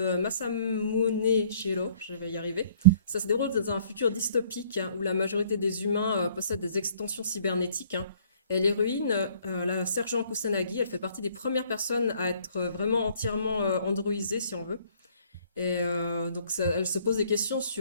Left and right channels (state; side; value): inverted; both; correlation -0.59